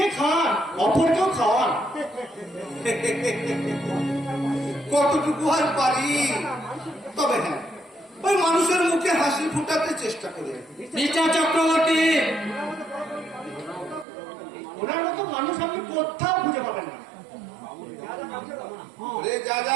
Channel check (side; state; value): left; drops out; at 14.1 s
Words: খান, অপরকেও খাওয়ান। কতটুকু আর পারি, তবে হ্যাঁ ওই মানুষের মুখে হাসি ফুটাতে চেষ্টা করে। মিস্টার চক্রবর্তী, ওনার মতো মানুষ আপনি কোথাও খুঁজে পাবেন না। রে যা যা